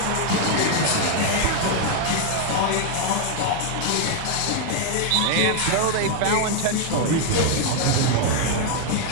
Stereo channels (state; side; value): different; both; correlation 0.00